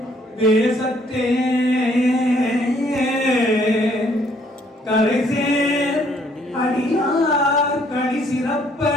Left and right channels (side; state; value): both; normal; correlation 0.65